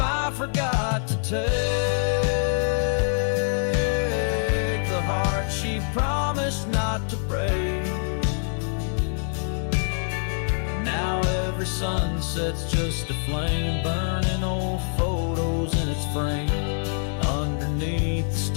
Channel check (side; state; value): right; silent; 60 dB below the other